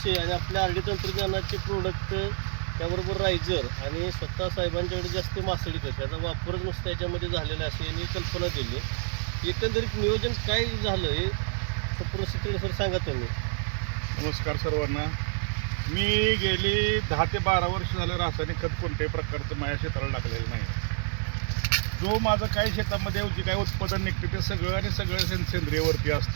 आणि आपल्या आरडी तंत्रज्ञानाचे प्रोडक्ट त्याबरोबर रायझर आणि स्वतः साहेबांच्याकडे जास्त मासळी खत याचा वापरच नुसतं याच्यामध्ये झालेला अशी यांनी कल्पना दिली. एकंदरीत नियोजन काय झालं हे संपूर्ण शितोळे सर सांगा तुम्ही. नमस्कार सर्वांना. मी गेली 10 ते 12 वर्ष झालं रासायनिक खत कोणत्याही प्रकारचं माझ्या क्षेत्राला टाकलेलं नाही. जो माझं काही शेतामध्ये जे काही उत्पादन निघतं ते सगळं सेंद्रियवरती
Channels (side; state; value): left; silent; 59 dB below the other